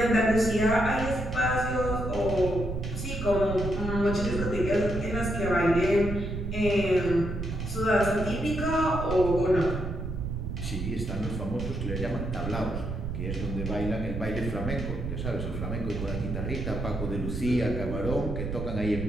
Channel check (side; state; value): right; noise; rumble, 4 dB below the sound